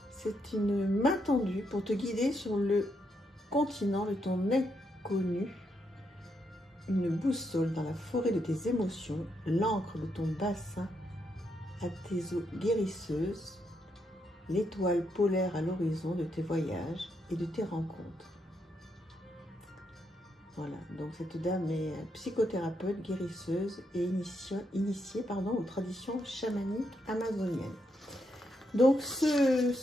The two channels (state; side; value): normal; both; correlation 0.79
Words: C'est une main tendue pour te guider sur le continent de ton inconnu, une boussole dans la forêt de tes émotions, l'encre de ton bassin à tes eaux guérisseuses, l'étoile polaire à l'horizon de tes voyages et de tes rencontres. Voilà, donc cette dame est psychothérapeute, guérisseuse et initiée aux traditions chamaniques amazoniennes. Donc